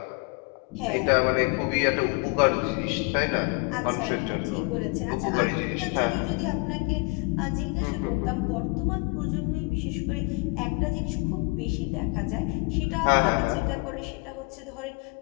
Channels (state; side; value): quieter; right; 29.4 dB